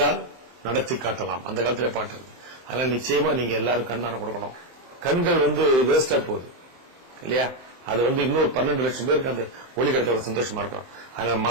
நடத்தி காட்டலாம், அந்த காலத்திலே பாட்டுருக்கு. அதனால நிச்சயமா நீங்க எல்லாரும் கண்தானம் கொடுக்கணும். கண்கள் வேஸ்டா போகுது இல்லையா? அது இன்னொரு 12 லட்சம் பேருக்கு அந்த ஒளி கிடைத்த ஒரு சந்தோஷமா இருக்கும். அதனால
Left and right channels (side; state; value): left; late; 23 ms